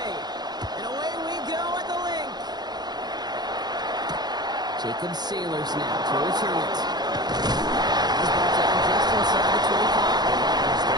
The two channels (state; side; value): late; left; 0.20 ms